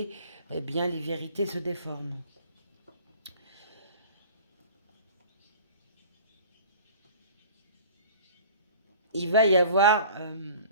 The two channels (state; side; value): inverted; both; correlation -0.45